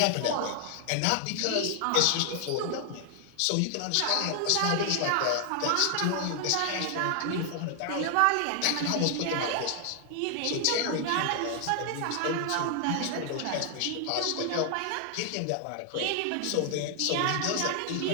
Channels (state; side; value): different; both; correlation 0.00